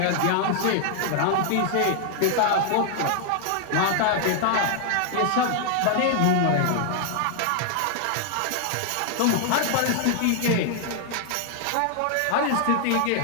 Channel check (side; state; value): both; different; correlation 0.00